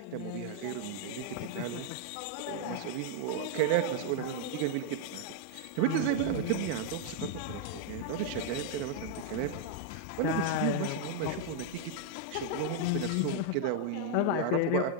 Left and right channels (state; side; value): different; both; correlation 0.00